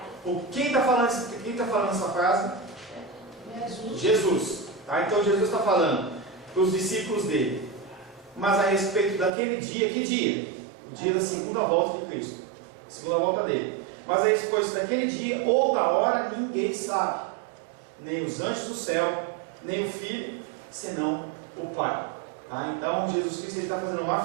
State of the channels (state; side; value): drops out; left; at 9.3 s